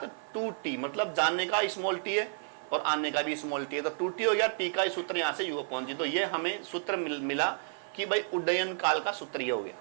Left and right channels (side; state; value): left; silent; 57 dB below the other